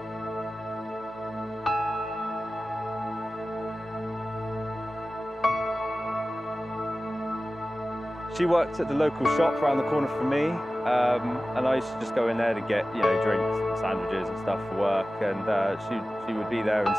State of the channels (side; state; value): both; normal; correlation 0.96